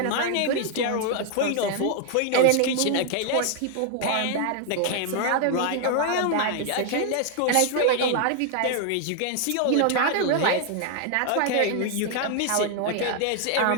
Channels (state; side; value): different; both; correlation 0.00